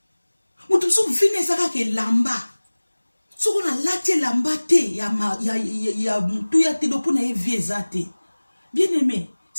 Mutu so vine saka ke lamba. So ko na lati lamba te ya mutu ya te do po na e viezate. Bien aimé,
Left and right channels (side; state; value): both; inverted; correlation -1.00